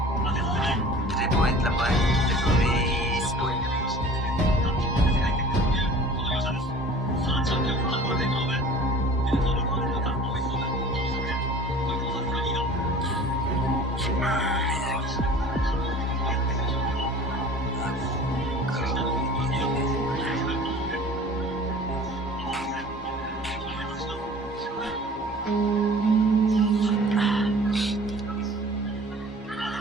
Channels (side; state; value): both; normal; correlation 0.44